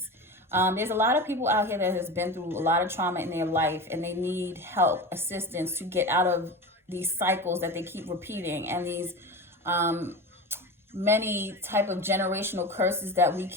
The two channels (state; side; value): normal; both; correlation 0.28